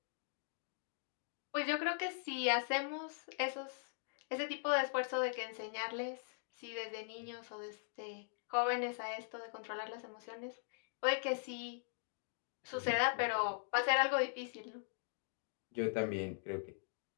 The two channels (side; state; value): right; silent; digital silence